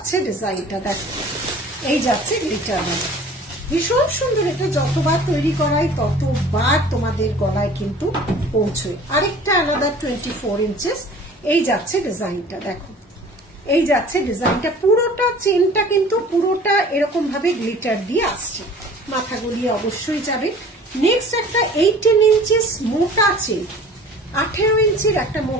ডিজাইনটা, দেখো এই যাচ্ছে গ্লিটার বালা, ভীষণ সুন্দর। এটা যতবার তৈরি করাই ততবার তোমাদের গলায় কিন্তু পৌঁছয়। আরেকটা আলাদা 24 ইঞ্চিস। এই যাচ্ছে ডিজাইনটা, দেখো এই যাচ্ছে ডিজাইনটা। পুরোটা চেনটা কিন্তু পুরোটা এরকম ভাবে গ্লিটার দিয়ে আসছে, মাথা গলিয়ে অবশ্যই যাবে। নেক্সট একটা 18 ইঞ্চিস মোটা চেন, 18 ইঞ্চির একটা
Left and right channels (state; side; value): normal; both; correlation 0.46